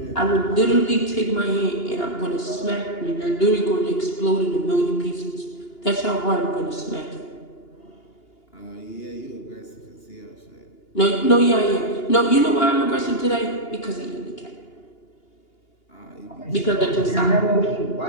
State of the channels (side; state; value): right; late; 2.8 ms